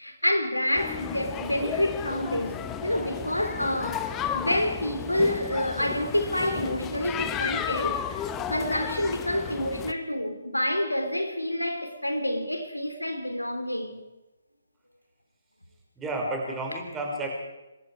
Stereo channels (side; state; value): both; inverted; correlation -0.74